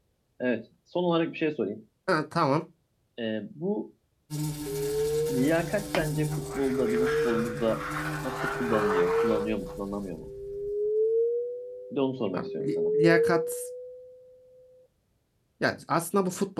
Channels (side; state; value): both; identical; correlation 1.00